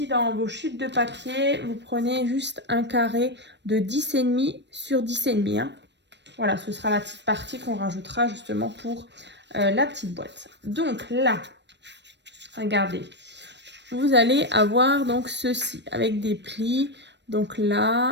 dans vos chutes de papier, vous prenez juste un carré de 10,5 sur 10,5. Hein. Voilà, ce sera la petite partie qu'on rajoutera justement pour la petite boîte. Donc là, regardez, vous allez avoir donc ceci avec des plis. Donc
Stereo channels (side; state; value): left; late; 0.51 ms